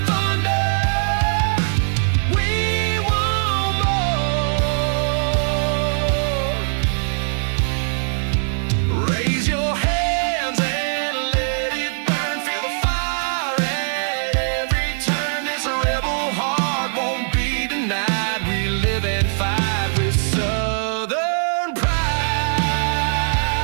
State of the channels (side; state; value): left; silent; digital silence